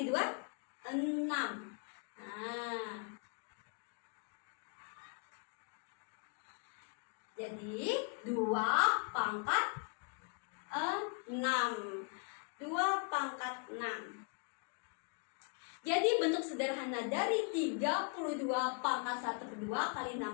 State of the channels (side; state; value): right; quieter; 38.2 dB